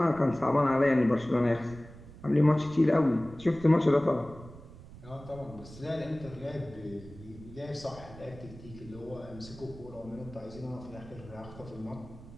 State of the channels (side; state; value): right; noise; rumble, 17 dB below the sound